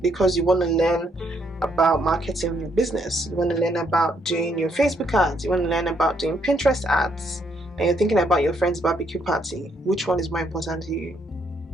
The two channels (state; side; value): normal; both; correlation 0.73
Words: because you want to learn about marketing your business. You want to learn about doing your Facebook ads. You want to learn about doing Pinterest ads. And you're thinking about your friend's barbecue party. Which one is more important to you?